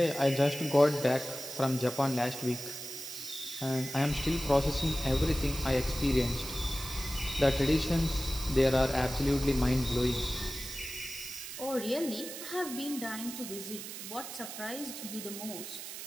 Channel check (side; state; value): right; noise; hiss, 9 dB below the sound